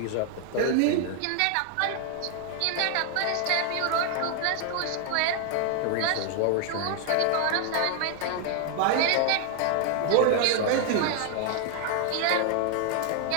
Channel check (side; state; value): both; different; correlation 0.00